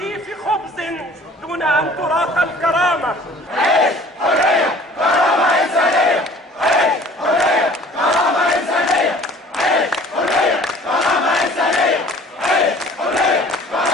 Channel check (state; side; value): normal; both; correlation 0.50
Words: خبز دون أن تراق الكرامة. عيش حرية، كرامة إنسانية. عيش حرية، كرامة إنسانية. عيش حرية، كرامة إنسانية. عيش حرية،